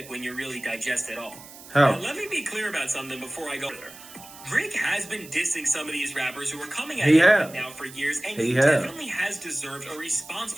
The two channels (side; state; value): right; noise; hiss, 18 dB below the sound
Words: when you really digest it all. How? Now, let me be clear about something before I go there. Drake has been dissing some of these rappers who are coming at him right now for years, and he definitely has deserved a response